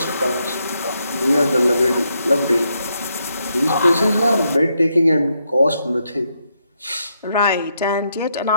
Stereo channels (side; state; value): both; inverted; correlation -0.79